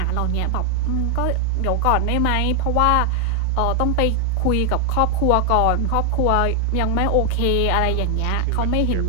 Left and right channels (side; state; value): both; different; correlation 0.00